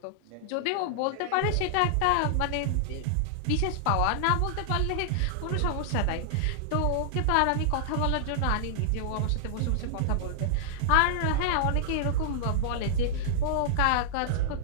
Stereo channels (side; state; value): both; different; correlation -0.01